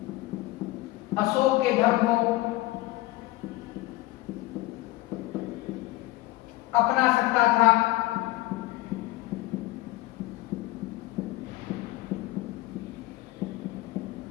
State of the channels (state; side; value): quieter; right; 18.6 dB